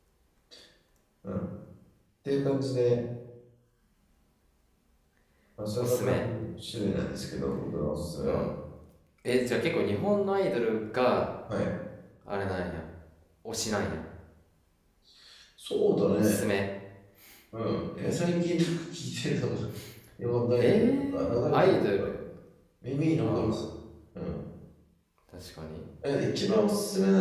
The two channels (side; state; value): both; identical; correlation 1.00